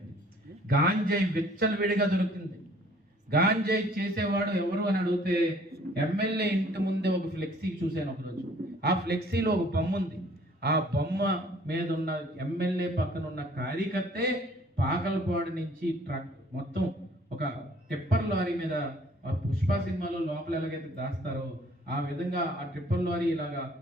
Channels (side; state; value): both; normal; correlation 0.56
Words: గాంజాయి విచ్చలవిడిగా దొరుకుతుంది. గాంజాయి చేసేవాడు ఎవరు అని అడిగితే ఎమ్మెల్యే ఇంటి ముందే ఒక ఫ్లెక్సీ చూశాను ఒకరోజు. ఆ ఫ్లెక్సీలో ఒక బొమ్మ ఉంది. ఆ బొమ్మ మీద ఉన్న ఎమ్మెల్యే పక్కన ఉన్న కార్యకర్తే పాకలపాడు నుంచి ట్రక్ మొత్తం ఒక టిప్పర్ లారీ మీద, పుష్ప సినిమాలో లోపల ఎలాగైతే దాస్తారో ఆ విధంగా ఆ టిప్పర్ లారీ ఇలాగా